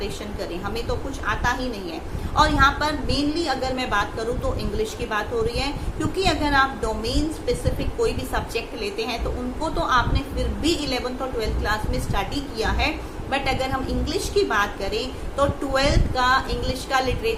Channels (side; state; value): both; identical; correlation 1.00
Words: करें, हमें तो कुछ आता ही नहीं है। और यहाँ पर मेनली अगर मैं बात करूँ तो इंग्लिश की बात हो रही है, क्योंकि अगर आप डोमेन स्पेसिफिक कोई भी सब्जेक्ट लेते हैं तो उनको तो आपने फिर भी 11th और 12th क्लास में स्टडी किया है। बट अगर हम इंग्लिश की बात करें तो 12th का इंग्लिश का